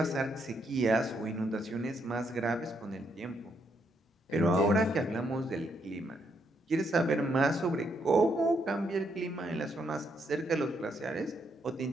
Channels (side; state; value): both; normal; correlation 0.76